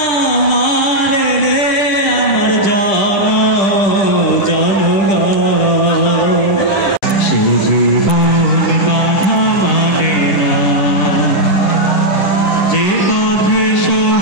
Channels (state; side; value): late; right; 9.9 ms